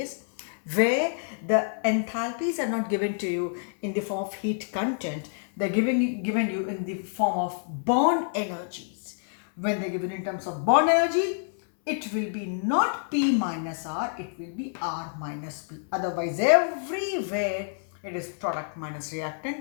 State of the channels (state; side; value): silent; right; 60 dB below the other